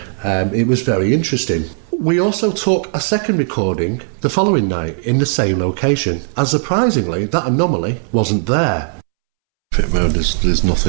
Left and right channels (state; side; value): silent; left; 69 dB below the other